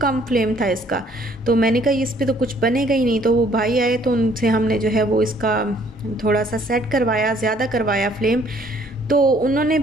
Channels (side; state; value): both; normal; correlation 0.61